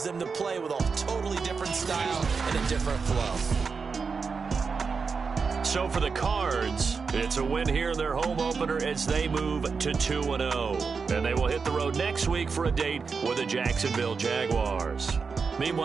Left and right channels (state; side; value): quieter; left; 5.2 dB